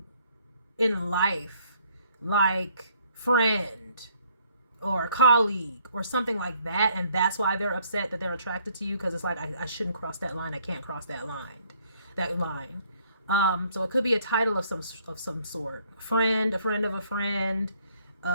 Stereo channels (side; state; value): both; inverted; correlation -0.65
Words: in life, like friend or colleague or something like that. And that's why they're upset that they're attracted to you, because it's like, I shouldn't cross that line. I can't cross that line. So it could be a title of some sort. A friend of a friend.